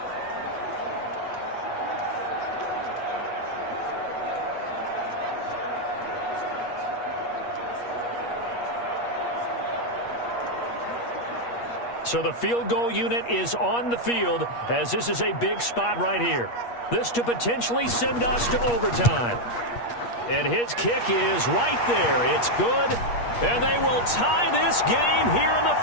So the field goal unit is on the field as this is a big spot right here. This to potentially send us to overtime. And his kick is right there. It's good. And they will tie this game here in the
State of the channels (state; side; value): late; right; 8.4 ms